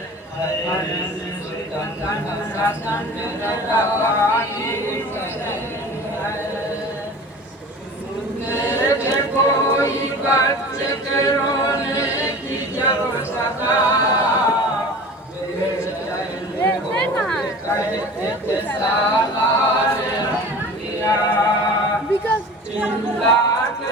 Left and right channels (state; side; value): normal; both; correlation 0.39